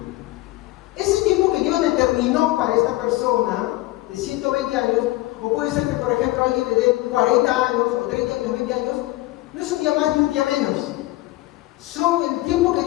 ese tiempo que Dios determinó para esta persona, de 120 años, o puede ser que por ejemplo alguien le dé 40 años, o 30 años, 20 años, no es un día más ni un día menos. Son el tiempo que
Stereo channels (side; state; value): right; quieter; 18.7 dB